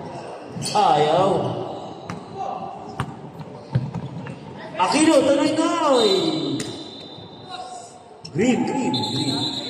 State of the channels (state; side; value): identical; both; correlation 1.00